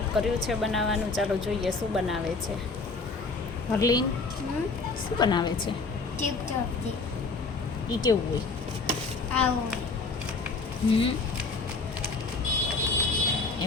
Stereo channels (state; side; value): quieter; right; 4.0 dB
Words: કર્યું છે બનાવવાનું. ચાલો જોઈએ શું બનાવે છે હરલીન. શું બનાવે છે? એ કેવું હોય?